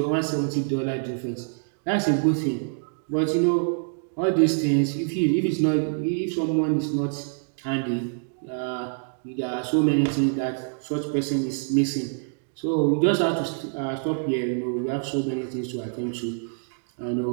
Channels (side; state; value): left; silent; digital silence